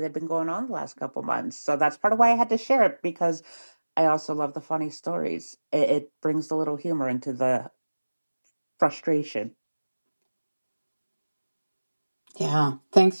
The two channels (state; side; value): inverted; both; correlation -1.00